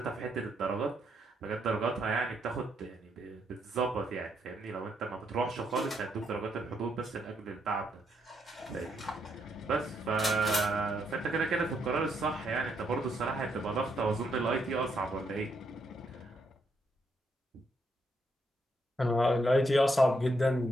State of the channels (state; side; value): normal; both; correlation 0.76